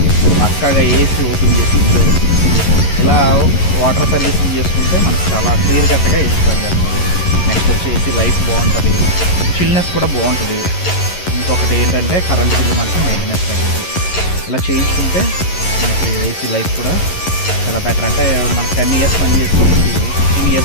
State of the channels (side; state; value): right; late; 11 ms